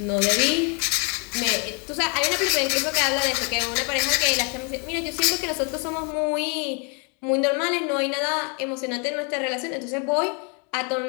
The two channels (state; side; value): quieter; right; 35.9 dB